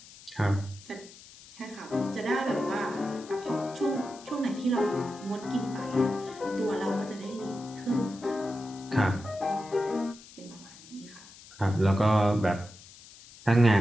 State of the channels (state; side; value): noise; left; hiss, 20 dB below the sound